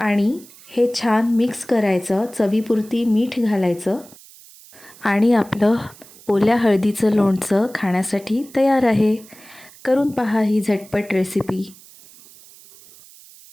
हे छान मिक्स करायचं. चवीपुरती मीठ घालायचं आणि आपलं ओल्या हळदीचं लोणचं खाण्यासाठी तयार आहे. करून पहा ही झटपट रेसिपी.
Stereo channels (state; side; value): noise; right; hiss, 22 dB below the sound